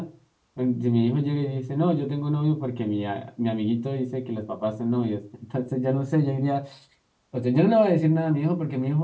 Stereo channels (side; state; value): both; identical; correlation 1.00